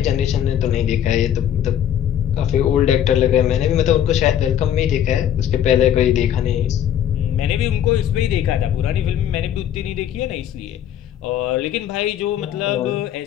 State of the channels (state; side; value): quieter; right; 10.2 dB